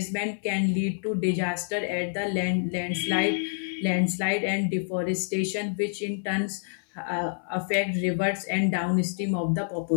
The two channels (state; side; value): silent; right; 60 dB below the other